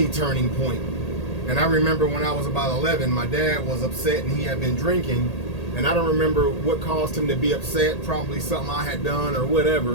turning point. And I remember when I was about 11, my dad was upset and he had been drinking. And I don't remember what caused him to be upset, probably something I had done or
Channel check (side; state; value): right; late; 1.8 ms